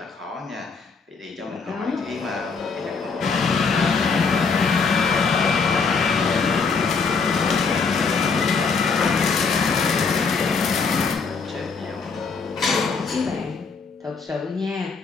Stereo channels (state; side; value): quieter; right; 5.0 dB